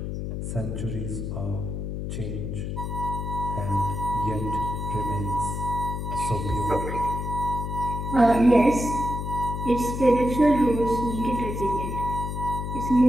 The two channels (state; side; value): noise; left; hum, 4 dB below the sound